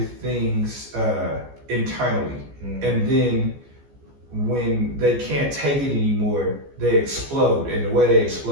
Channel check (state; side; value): late; left; 14 ms